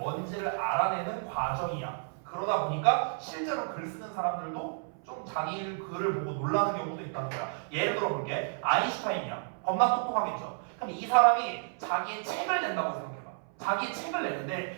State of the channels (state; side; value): silent; left; 57 dB below the other